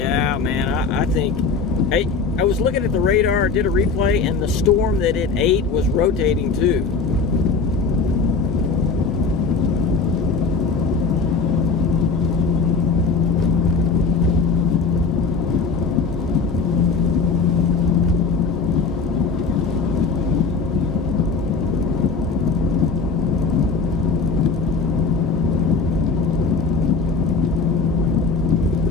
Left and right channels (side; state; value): right; quieter; 4.6 dB